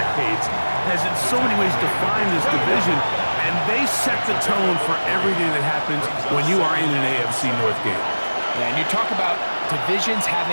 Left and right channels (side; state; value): both; inverted; correlation -1.00